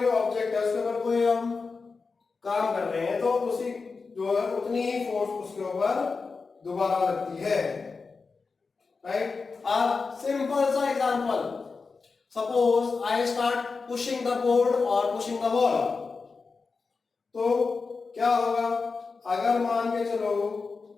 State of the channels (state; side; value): quieter; right; 4.5 dB